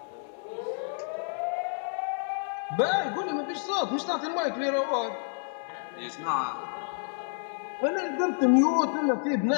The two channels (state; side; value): silent; right; digital silence